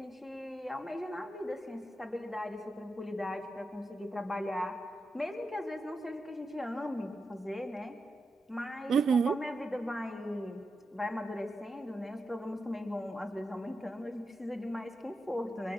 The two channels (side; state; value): both; normal; correlation 0.88